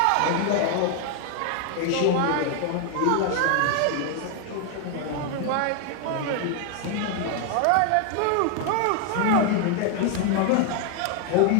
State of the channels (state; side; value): different; both; correlation 0.00